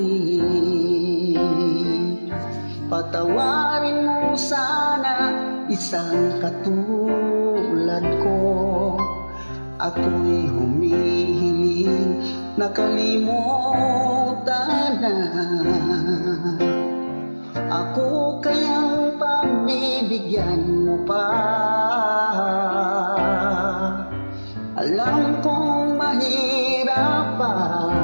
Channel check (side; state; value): both; inverted; correlation -1.00